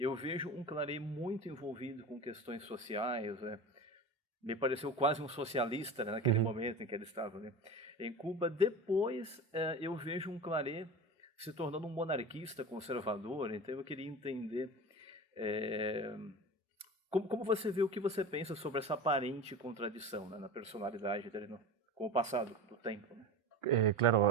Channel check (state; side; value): normal; both; correlation 0.31